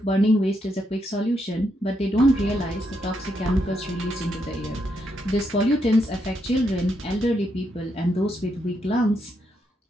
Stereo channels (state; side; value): normal; both; correlation 0.79